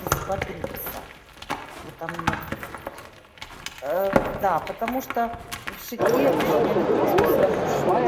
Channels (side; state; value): both; identical; correlation 1.00